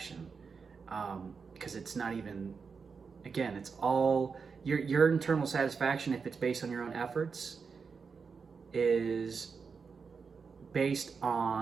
Because it's not even, again, it's all your internal satisfaction, if it's based on your own efforts, is based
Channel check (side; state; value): left; quieter; 5.4 dB